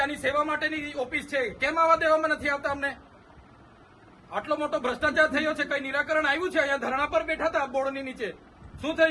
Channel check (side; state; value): both; identical; correlation 1.00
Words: સેવા માટેની ઓફિસ છે. કેમ આવા દેવામાં નથી આવતા અમને? આટલો મોટો ભ્રષ્ટાચાર થયો છે, કઈ નિરાકરણ આવ્યું છે? અહીંયા ધરણા પર બેઠા હતા બોર્ડની નીચે, શું